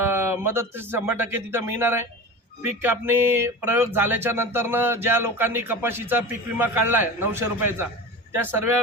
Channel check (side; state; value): both; normal; correlation 0.30